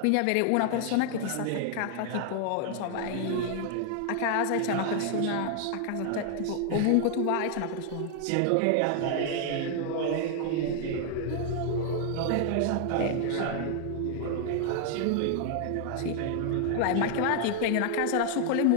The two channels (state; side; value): different; both; correlation 0.00